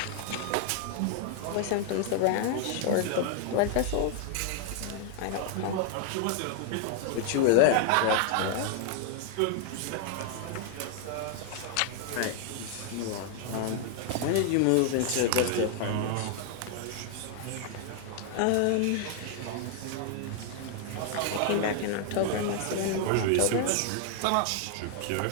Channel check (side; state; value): both; different; correlation 0.00